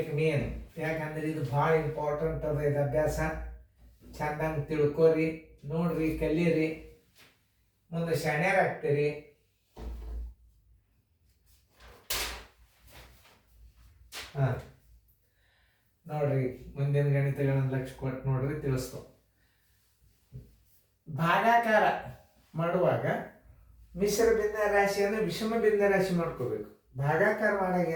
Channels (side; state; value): both; identical; correlation 1.00